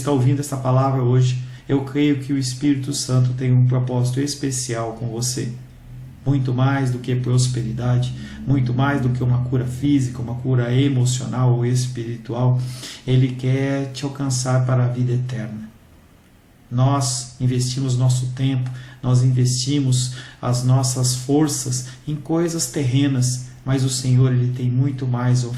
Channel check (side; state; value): both; identical; correlation 1.00